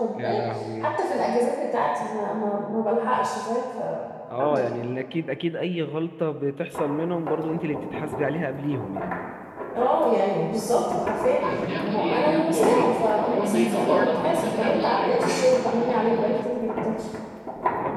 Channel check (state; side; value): identical; both; correlation 1.00